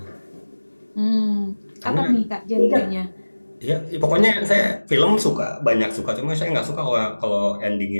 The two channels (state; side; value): inverted; both; correlation -1.00